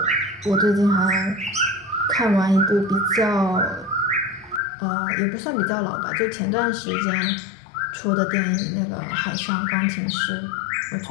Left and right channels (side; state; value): right; drops out; at 4.6 s